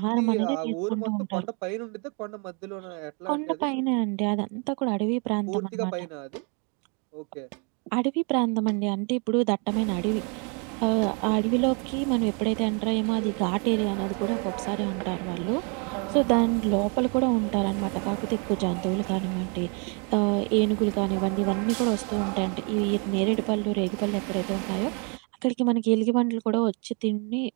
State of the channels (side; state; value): left; quieter; 35.5 dB